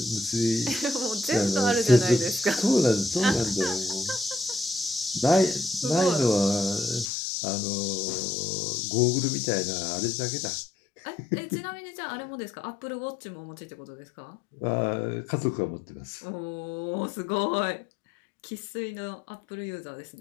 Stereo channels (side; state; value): right; drops out; at 7.1 s